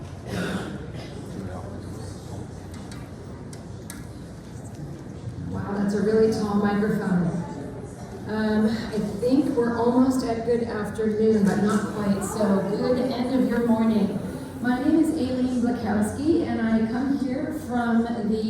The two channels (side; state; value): both; identical; correlation 1.00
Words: Wow, that's a really tall microphone. I think we're almost at good afternoon, but not quite, so good end of your morning. My name is Aileen Blakowski, and I come here from